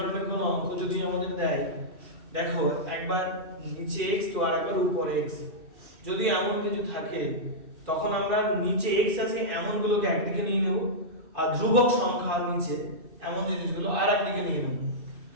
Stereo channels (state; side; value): late; left; 2.6 ms